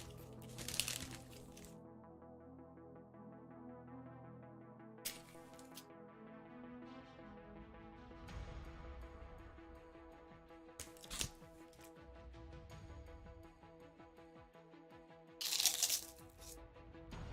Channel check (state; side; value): identical; both; correlation 1.00